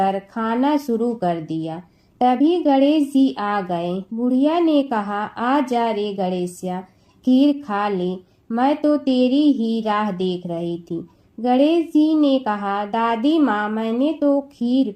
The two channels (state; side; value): identical; both; correlation 1.00